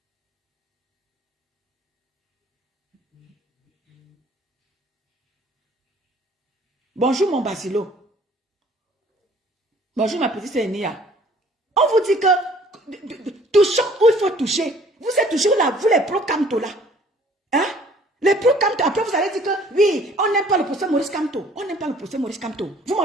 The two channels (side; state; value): both; normal; correlation 0.55